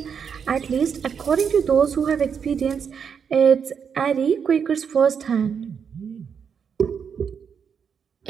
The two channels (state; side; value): quieter; left; 7.0 dB